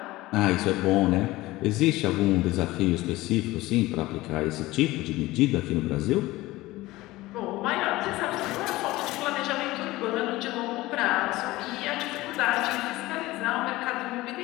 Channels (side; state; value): right; quieter; 18.6 dB